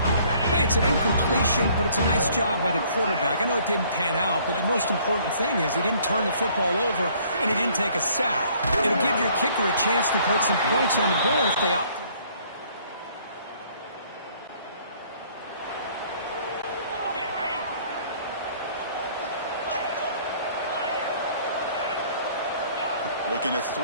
Hey, it's an incompletion, but it's a nice job by the quarterback. I know it didn't pan out, but the most important thing is he didn't turn the football over and he didn't take a sack. It'll give your kicker a chance to put some points on the board if they opt. Looking to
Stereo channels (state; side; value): inverted; both; correlation -0.59